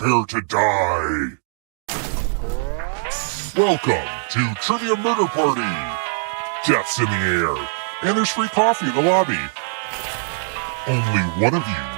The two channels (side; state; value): left; silent; digital silence